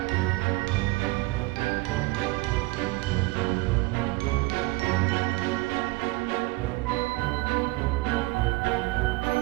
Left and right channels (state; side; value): quieter; left; 22.2 dB